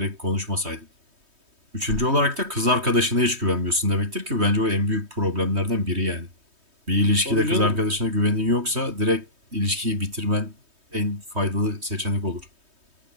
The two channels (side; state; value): left; late; 3.2 ms